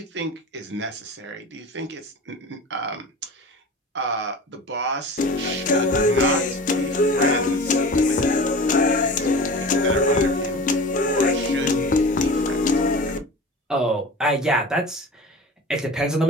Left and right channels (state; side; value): normal; both; correlation 0.35